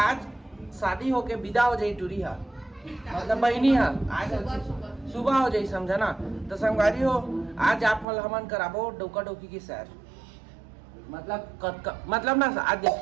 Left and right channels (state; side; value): drops out; left; at 8.1 s